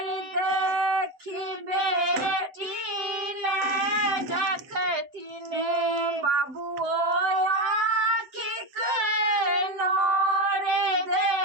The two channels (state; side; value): late; left; 7.8 ms